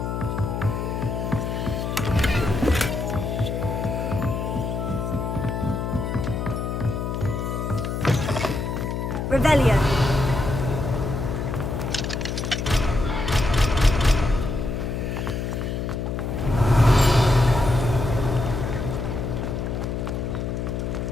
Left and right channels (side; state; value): left; noise; hum, 2 dB below the sound